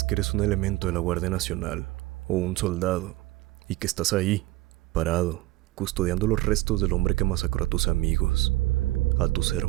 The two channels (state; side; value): quieter; left; 18.5 dB